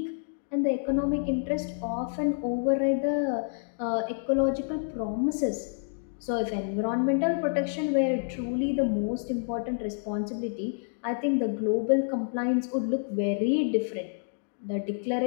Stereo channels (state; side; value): silent; right; digital silence